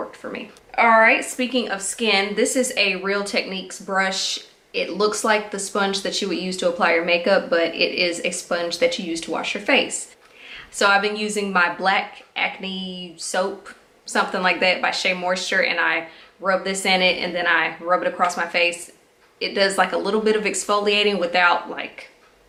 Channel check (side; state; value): both; identical; correlation 1.00